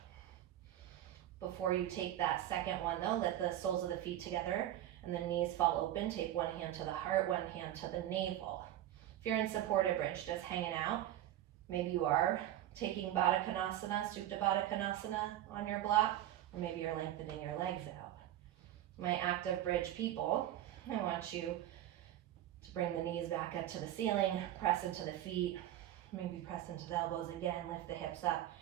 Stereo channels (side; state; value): left; quieter; 12.8 dB